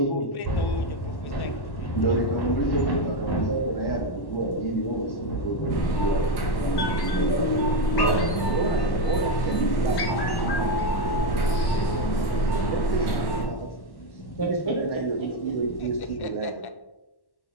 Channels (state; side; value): late; right; 1.1 ms